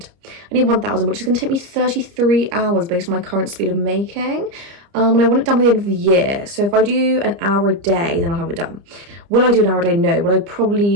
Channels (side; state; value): left; late; 30 ms